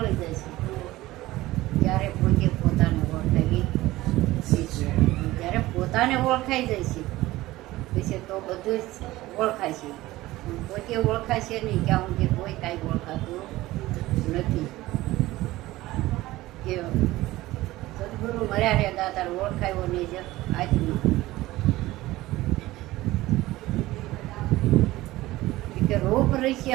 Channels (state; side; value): quieter; left; 17.6 dB